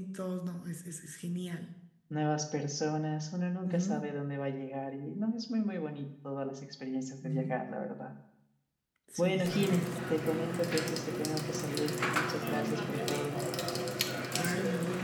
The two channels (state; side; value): identical; both; correlation 1.00